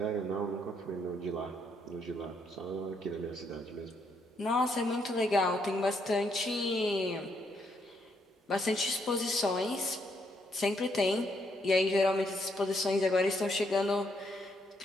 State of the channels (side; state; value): both; normal; correlation 0.74